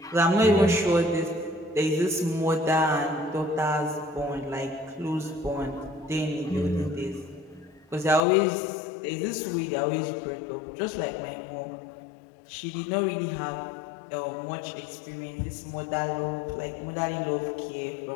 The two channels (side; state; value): right; drops out; at 8.2 s